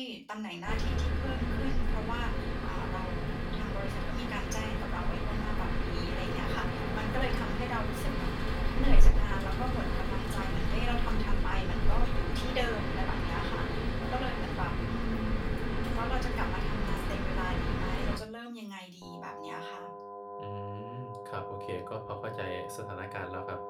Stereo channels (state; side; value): identical; both; correlation 1.00